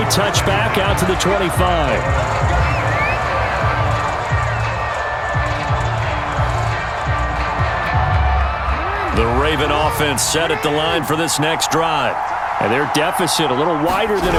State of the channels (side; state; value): both; identical; correlation 1.00